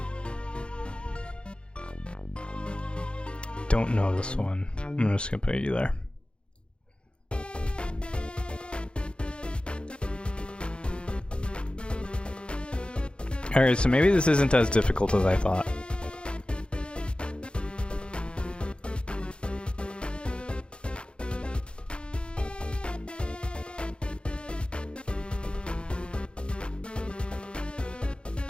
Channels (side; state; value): right; late; 0.055 ms